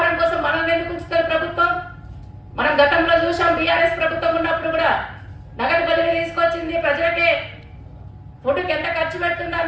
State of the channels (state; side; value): identical; both; correlation 1.00